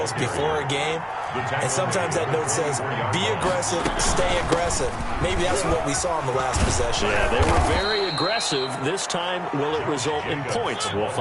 before a game. And sometimes that note says, be aggressive, stay aggressive. Maybe that's what we saw in the last possession. Yeah, they were very aggressive. This time, will it result in points? We'll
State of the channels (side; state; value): both; identical; correlation 1.00